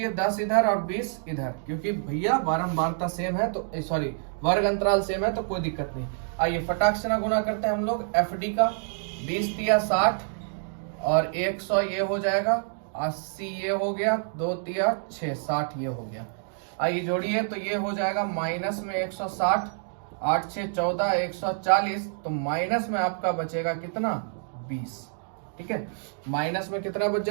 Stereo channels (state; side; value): silent; left; digital silence